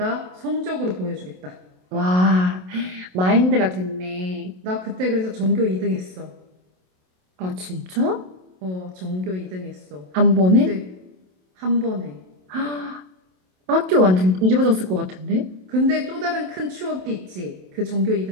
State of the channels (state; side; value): late; left; 27 ms